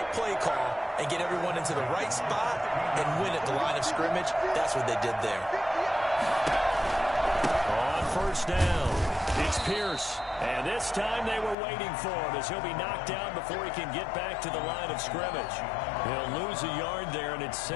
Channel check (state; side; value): drops out; right; at 11.6 s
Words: play call and get everyone into the right spot and win at the line of scrimmage? That's what they did there. On first down, it's Pierce. And this time they were waiting for him as he'll be knocked down before he can get back to the line of scrimmage. He'll lose a yard there, and it's